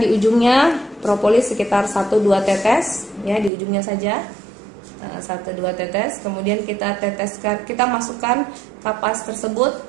di ujungnya propolis sekitar 1-2 tetes ya, di ujungnya saja. 1-2 tetes. Kemudian kita teteskan, kita masukkan kapas tersebut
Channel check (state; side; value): drops out; left; at 3.5 s